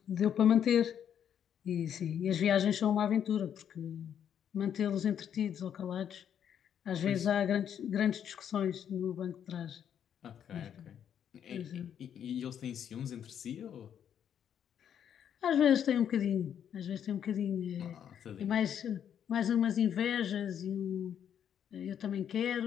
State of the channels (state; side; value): quieter; right; 9.0 dB